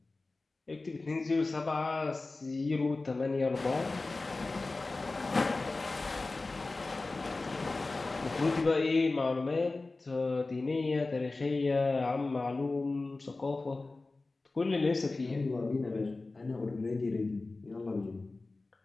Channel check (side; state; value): right; quieter; 3.4 dB